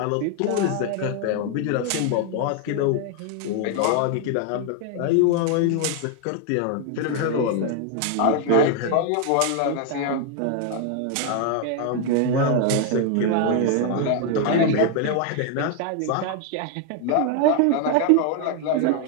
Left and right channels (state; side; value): different; both; correlation 0.01